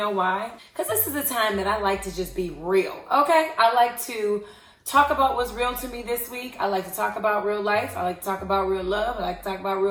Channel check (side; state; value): both; identical; correlation 1.00